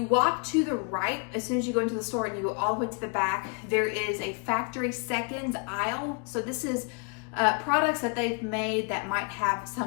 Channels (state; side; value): quieter; right; 35.5 dB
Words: walk to the right, as soon as you go into the store and you go all the way to the back, there is a factory seconds aisle. So this is products that they've made that might have